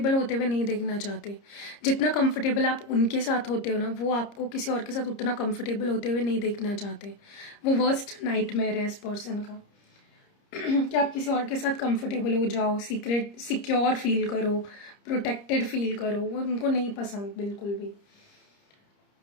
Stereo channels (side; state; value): right; late; 30 ms